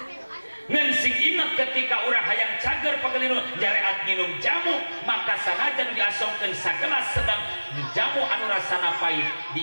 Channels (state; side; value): inverted; both; correlation -1.00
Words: Ngan sing ingat ketika urang hayang cager pagelinu jareat nginum jamu, maka sanajan diasongkeun sagelas sedang jamu anu rasana pait